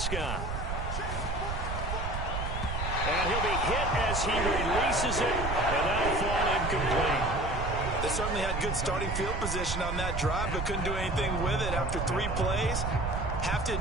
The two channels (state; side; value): noise; right; rumble, 3 dB below the sound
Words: And he'll be hit as he releases it, and that'll fall incomplete. They certainly had good starting field position on that drive, but couldn't do anything with it after 3 plays. Have to